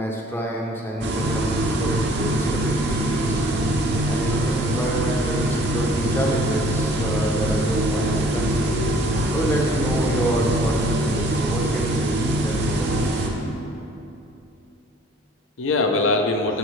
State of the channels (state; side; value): normal; both; correlation 0.54